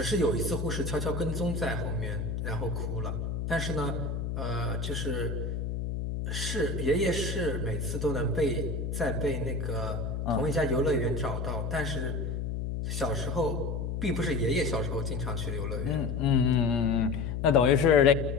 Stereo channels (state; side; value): noise; left; hum, 3 dB below the sound